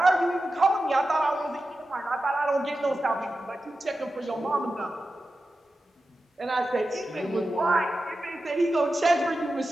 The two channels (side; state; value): both; normal; correlation 0.92